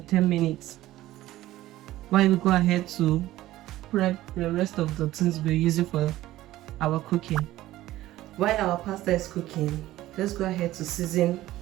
10 minutes while we go ahead to prep the rest of the things we're using for our cooking. While our pasta is cooking, let's go ahead to season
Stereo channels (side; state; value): left; quieter; 15.5 dB